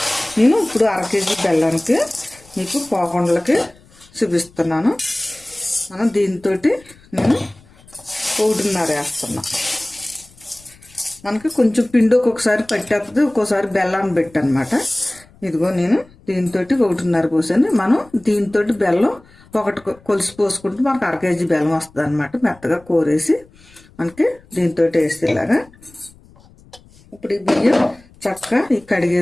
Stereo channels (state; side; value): noise; left; rumble, 27 dB below the sound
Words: నేను ఇప్పుడు 1/2 కేజీ బెల్లానికి మీకు పోకుండలకి చూపిస్తున్నాను. మనం దీంతో నేను 1.5 వేస్తున్నా. మనకి కొంచెం పిండి ఒక్కొక్కసారి పట్టేస్తుంది, ఒక్కోసారి బెల్లాన్ని పెట్టనమాట. ఇదిగో నేను దీంతో 1.5 పోసాను. మనం దీంతో బెల్లం 1 కొలిసి పోసుకుంటే మనకు 1/2 కేజీ బెల్లం వస్తుంది అనమాట. మెత్తగా కోరేసి మనకి దీంతో వేసేలాగా. ఇప్పుడు ఈ బియ్యం చక్కగా